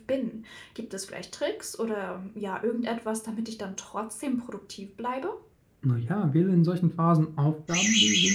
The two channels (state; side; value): identical; both; correlation 1.00